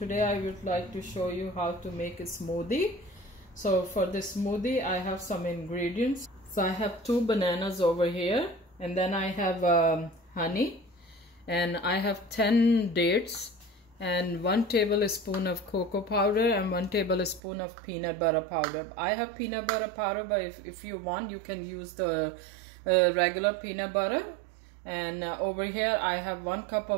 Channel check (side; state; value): left; drops out; at 17.4 s